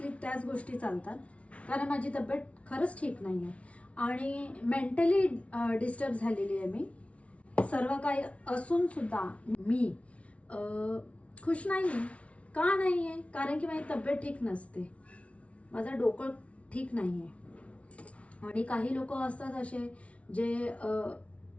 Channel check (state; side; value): late; right; 0.063 ms